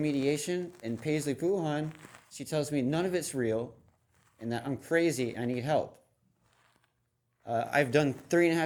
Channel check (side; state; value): both; identical; correlation 1.00